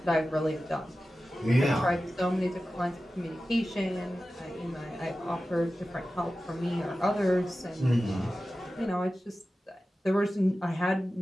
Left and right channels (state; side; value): normal; both; correlation 0.94